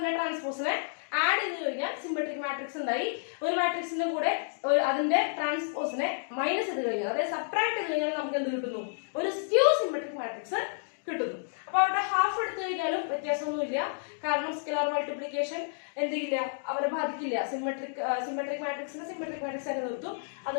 ട്രാൻസ്പോസിനെ ആഡ് ചെയ്ത് കഴിഞ്ഞാൽ സിമെട്രിക് മാട്രിക്സ് ഉണ്ടായി. ഒരു മാട്രിക്സിന്റെ കൂടെ അതിന്റെ ട്രാൻസ്പോസിനെ മൈനസ് ചെയ്ത് കഴിഞ്ഞാൽ, അതായത് സബ്ട്രാക്ട് ചെയ്ത് കഴിഞ്ഞാൽ നമുക്ക് എന്ത് കിട്ടുന്നു? ഒരു സ്ക്യൂ സിമെട്രിക് മാട്രിക്സ് കിട്ടുന്നു. അപ്പൊ അവിടെ ഹാഫ് എടുത്തു കഴിഞ്ഞാലും വ്യത്യാസമൊന്നുമില്ല. കാരണം സ്കെലാർ മൾട്ടിപ്ലിക്കേഷൻ എന്ത് ചെയ്യില്ല, അവരെ ബാധിക്കില്ല. സിമെട്രിക് മാട്രിക്സിനെ സിമെട്രിക് മാട്രിക്സ് ആയിട്ട് നിർത്തും.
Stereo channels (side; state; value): right; silent; digital silence